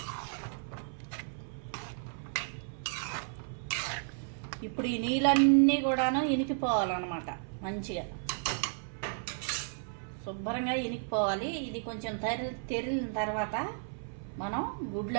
ఇప్పుడు ఈ నీళ్ళన్నీ కూడాను ఇనికిపోవాలన్నమాట. మంచిగా శుభ్రంగా ఇనికిపోవాలి. ఇది కొంచెం తెరిలిన తర్వాత మనం గుడ్లు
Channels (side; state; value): left; silent; 56 dB below the other